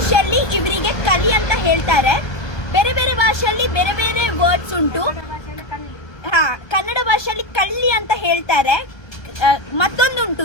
ಇವರಿಗೆ ಕಲಿ ಅಂತ ಹೇಳ್ತಾರೆ, ಬೇರೆ ಬೇರೆ ಭಾಷೆಯಲ್ಲಿ ಬೇರೆ ಬೇರೆ ವರ್ಡ್ಸ್ ಉಂಟು. ಹಾ, ಕನ್ನಡ ಭಾಷೆಯಲ್ಲಿ ಕಳ್ಳಿ ಅಂತ ಹೇಳ್ತಾರೆ. ಮತ್ತೊಂದುಂಟು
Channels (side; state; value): right; late; 1.2 ms